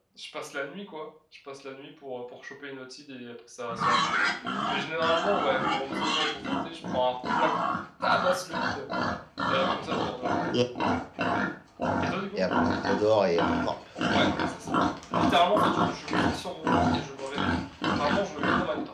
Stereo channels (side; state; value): both; identical; correlation 1.00